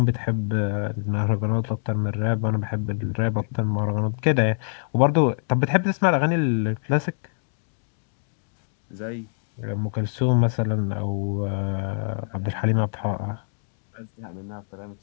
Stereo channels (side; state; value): right; silent; digital silence